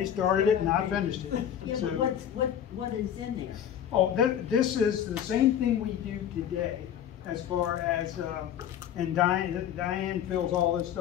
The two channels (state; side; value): quieter; right; 9.6 dB